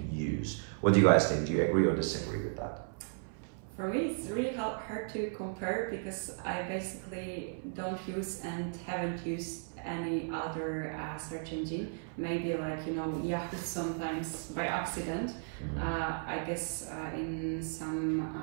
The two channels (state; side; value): silent; left; 54 dB below the other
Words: use. What do you guys think? Do you agree or disagree with that? For me, it's really hard to compare because I basically don't use and haven't used any other search engine. Maybe like, Yahoo sometimes by accident. I guess in some